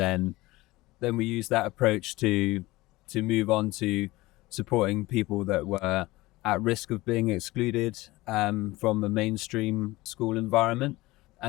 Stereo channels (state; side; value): quieter; right; 19.7 dB